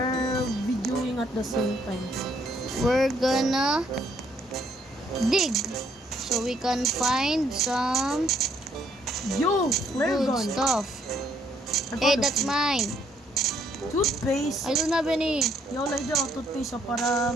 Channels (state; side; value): normal; both; correlation 0.68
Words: videoing at the same time. We're gonna dig so we can find some Yo! Flare good gun! stuff. I Hey, found a that's few. mine. Toothpaste! I don't have any. Yo, like daw, toothpaste